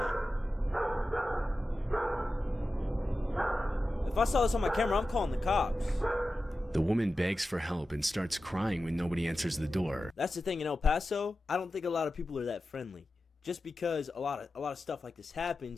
If I saw this on my camera, I'm calling the cops. The woman begs for help and starts crying when nobody answers the door. That's the thing in El Paso. I don't think a lot of people are that friendly. Just because a lot of stuff like this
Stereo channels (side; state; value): both; normal; correlation 0.93